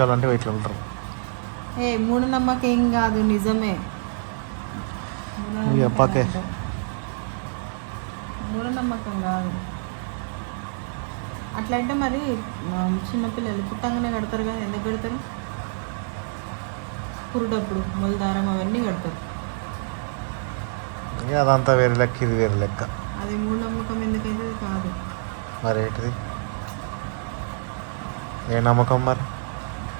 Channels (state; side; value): silent; left; 61 dB below the other